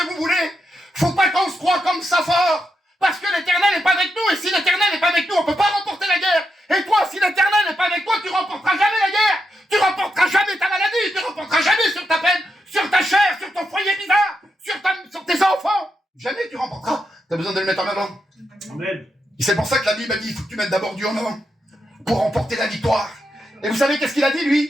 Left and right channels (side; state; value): both; normal; correlation 0.84